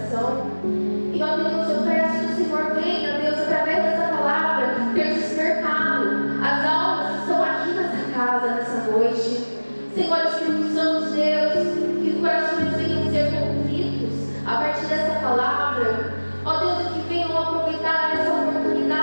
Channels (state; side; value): inverted; both; correlation -1.00